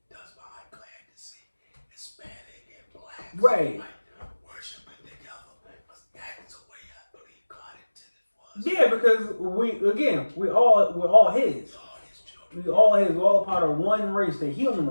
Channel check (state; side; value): inverted; both; correlation -1.00